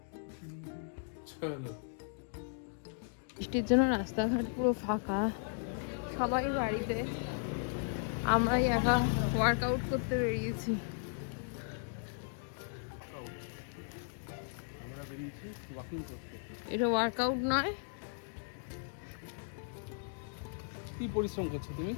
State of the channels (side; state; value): right; silent; digital silence